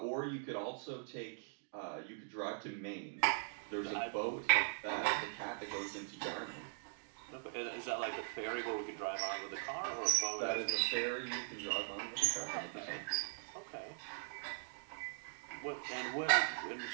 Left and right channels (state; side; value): silent; left; digital silence